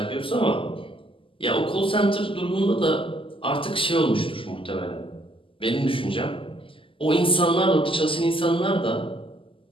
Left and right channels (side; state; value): right; late; 0.25 ms